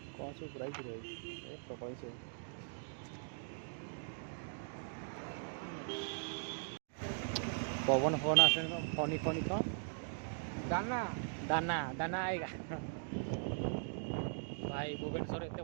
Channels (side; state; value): left; silent; digital silence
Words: କ'ଣ ସବୁ ପ୍ରାଇସ୍ ରହିଛି ଏ ପ୍ରବଳ ସବୁ पवन फोन आसे फनी फनी कौन दाना दाना दाना आएगा भाई भुवनेश्वर एत